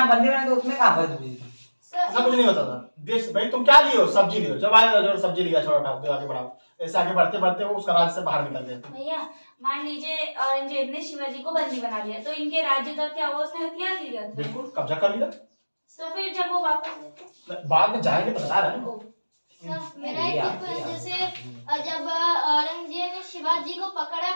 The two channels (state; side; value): inverted; both; correlation -1.00